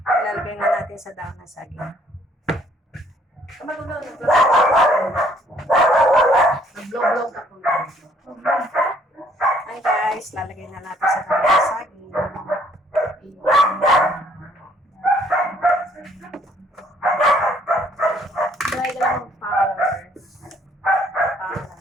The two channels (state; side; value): normal; both; correlation 0.63